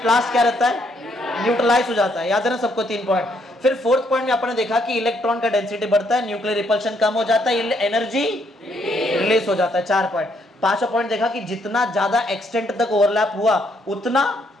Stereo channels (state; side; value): normal; both; correlation 0.72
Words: last क्या रहता है? न्यूट्रलाइज हो जाता है। याद है ना सबको? 3 पॉइंट। फिर 4th पॉइंट में आपने देखा कि इलेक्ट्रॉन का डेंसिटी बढ़ता है, न्यूक्लियर रिपल्शन कम हो जाता है, एनर्जी रिलीज हो जाता है। 4 पॉइंट। 5वां पॉइंट देखा कि जितना ज्यादा एक्सटेंट तक ओवरलैप हुआ उतना